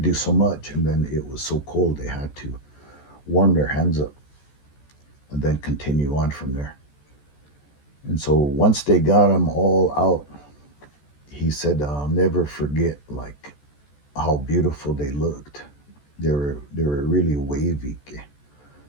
so much, and then it was so cold they had to warm their hands up and then continue on from there. And so once they got them all out, he said, "I'll never forget like how beautiful they looked. They were really wavy,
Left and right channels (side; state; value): right; late; 14 ms